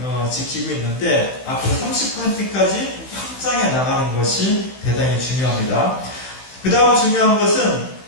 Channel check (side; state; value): right; late; 15 ms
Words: 지키고 있는데 앞으로 30%까지 확장해 나가는 것이 대단히 중요합니다. 그 다음 중요한 것은